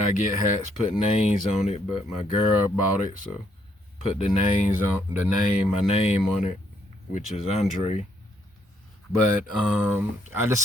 get hats, put names on it, but my girl bought it, so put my name on it, which is Andre. But I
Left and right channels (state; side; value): normal; both; correlation 0.71